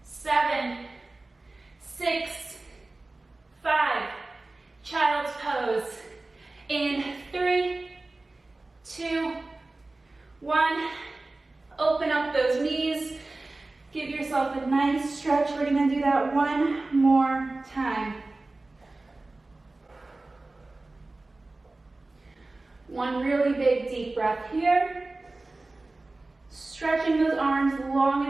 7, 6, 5. Child's pose. In 3, 2, 1. Open up those knees. Give yourself a nice stretch. We're gonna do that that one more time. One really big deep breath here. Stretching those arms long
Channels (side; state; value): left; quieter; 3.1 dB